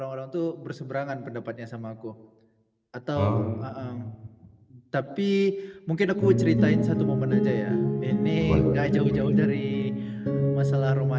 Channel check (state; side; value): identical; both; correlation 1.00